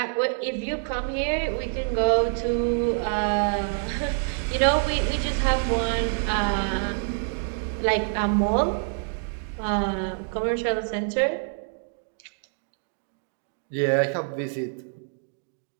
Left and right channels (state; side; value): silent; left; 61 dB below the other